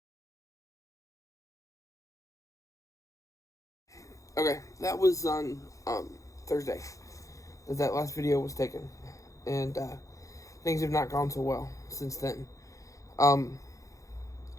it. Okay, that was on Thursday that last video was taken, and things have not gone so well since then. I'm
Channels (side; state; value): right; late; 0.16 ms